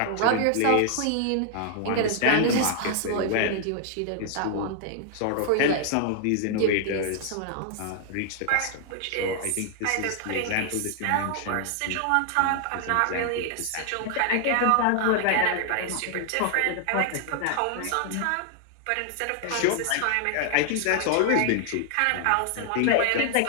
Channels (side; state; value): both; different; correlation 0.00